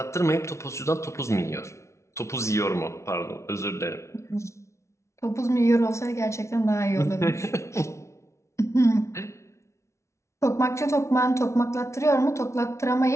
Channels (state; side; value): late; right; 0.13 ms